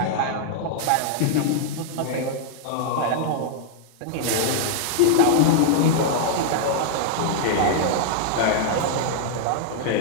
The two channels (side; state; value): both; different; correlation 0.00